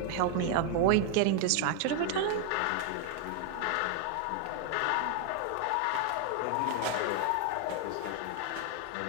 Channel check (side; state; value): both; different; correlation 0.00